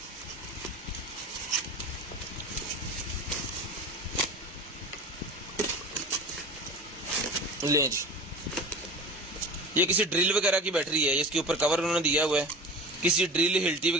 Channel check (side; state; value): both; normal; correlation 0.34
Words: लें जी, ये किसी ड्रिल वगैरह की बैटरी है, इसके ऊपर कवर उन्होंने दिया हुआ है, किसी ड्रिल हिल्टी